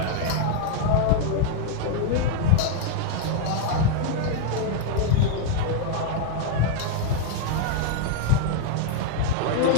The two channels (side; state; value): both; different; correlation 0.00